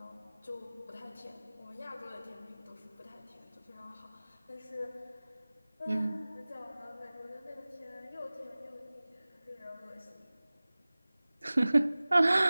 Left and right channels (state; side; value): inverted; both; correlation -0.99